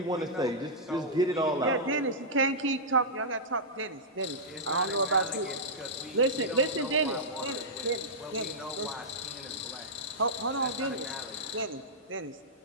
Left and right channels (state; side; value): normal; both; correlation -0.11